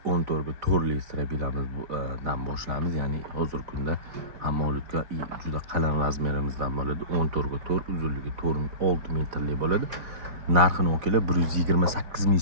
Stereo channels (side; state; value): left; late; 3.6 ms